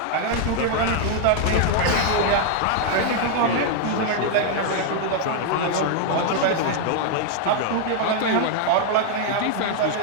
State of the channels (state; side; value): different; both; correlation 0.00